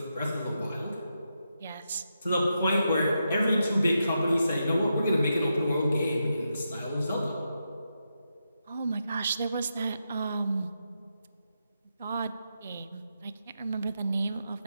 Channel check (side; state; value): both; inverted; correlation -0.85